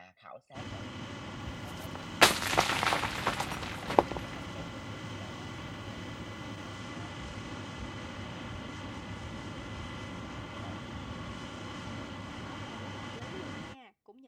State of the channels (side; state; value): both; identical; correlation 1.00